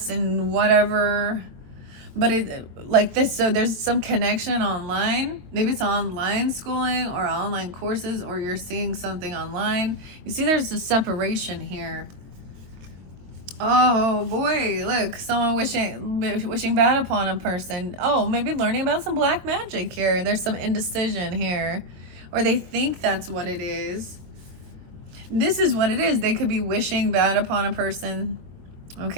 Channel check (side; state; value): left; late; 22 ms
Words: and whatever. But it like this, so there's some connection online. Maybe it's online schooling or online courses, or you're seeing something online. You see there's a separation here. Oh boy, look, someone wishing bad upon a person. Oh, maybe learning about some black magic here. There's some indecision here. Or they think that's what it is. This is what it is. They could be wishing bad upon a person.